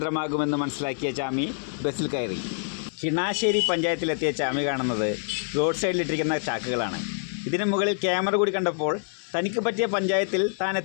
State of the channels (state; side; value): silent; right; 58 dB below the other